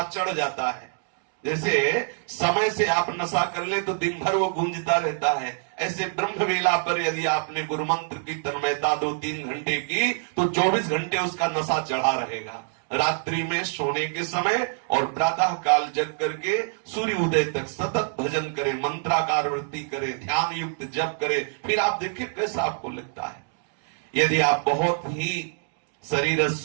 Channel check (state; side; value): silent; left; digital silence